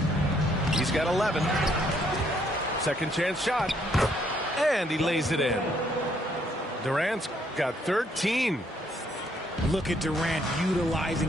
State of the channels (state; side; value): normal; both; correlation 0.69